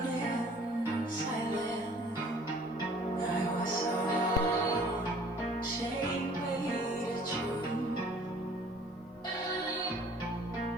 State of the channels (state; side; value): normal; both; correlation 0.53